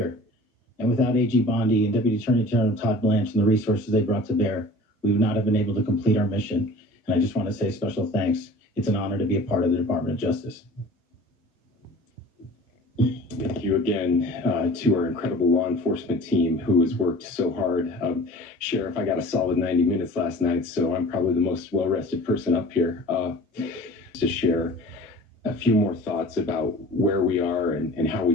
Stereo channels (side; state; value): both; normal; correlation 0.43